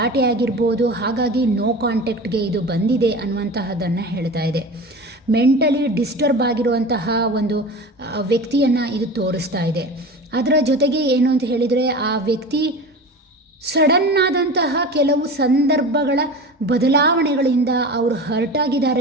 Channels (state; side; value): normal; both; correlation 0.33